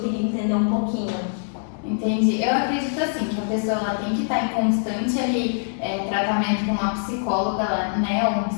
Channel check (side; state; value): right; silent; digital silence